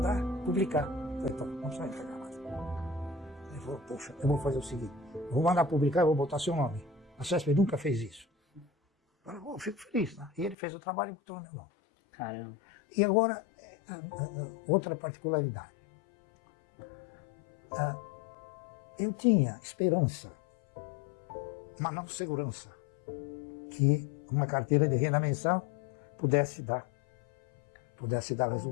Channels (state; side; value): drops out; right; at 10.6 s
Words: publicar. Eu falei: então, não precisa entregar mais. Ele falou: poxa, eu vou fazer o seguinte, eu vou mandar publicar e vou botar seu nome. A CESP nunca fez isso. Eu falei: fico feliz, né? E ele fez o trabalho e botou o meu nome. Caramba. E agora, outra particularidade. Eu tinha esperança, mas não segurança, que uma carteira de renda mensal pudesse dar